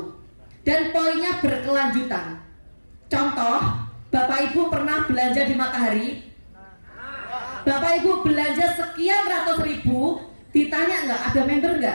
dan poinnya berkelanjutan. Contoh, Bapak Ibu pernah belanja di Matahari, Bapak Ibu belanja sekian ratus ribu, ditanya nggak ada member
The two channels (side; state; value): both; inverted; correlation -1.00